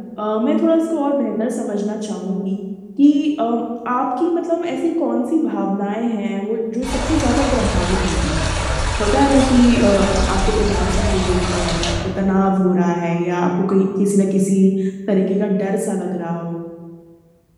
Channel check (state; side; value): identical; both; correlation 1.00